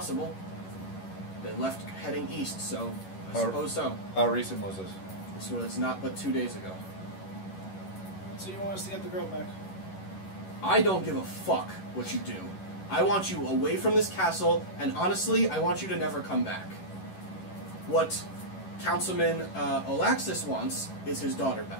They left heading east, so I How- suppose so. How recent was this? This was not but 2 days ago. So you want us to get the girl back? I don't give a fuck what you do. I want you away from this castle, and honestly, I want you to never come back. What Councilman Olaxis wants is his daughter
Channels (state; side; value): late; right; 11 ms